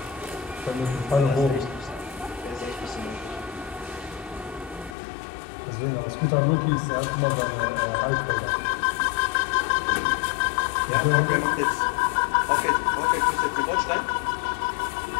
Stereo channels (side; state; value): right; drops out; at 5.0 s